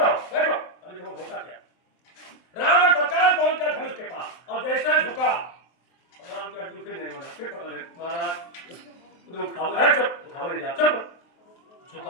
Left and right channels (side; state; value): right; late; 23 ms